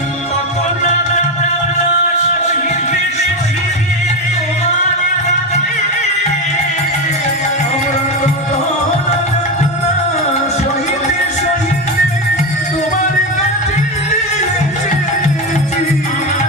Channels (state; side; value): normal; both; correlation 0.14